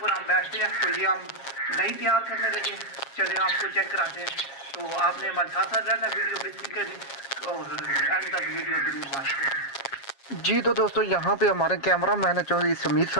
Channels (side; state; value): right; late; 7.3 ms